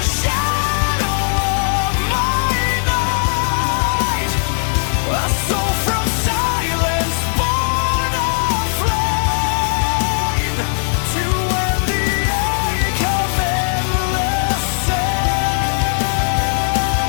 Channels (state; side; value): silent; right; 60 dB below the other